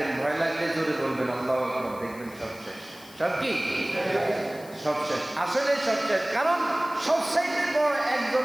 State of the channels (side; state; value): left; noise; hiss, 21 dB below the sound